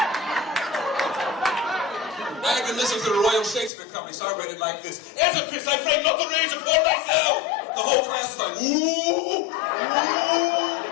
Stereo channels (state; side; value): drops out; right; at 3.7 s